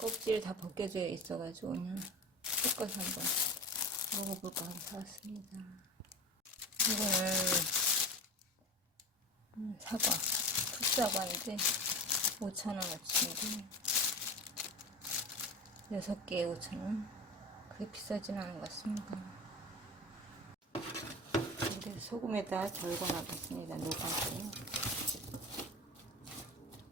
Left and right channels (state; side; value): normal; both; correlation 0.30